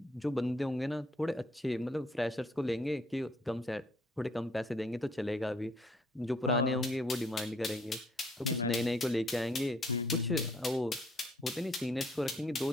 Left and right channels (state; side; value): normal; both; correlation 0.65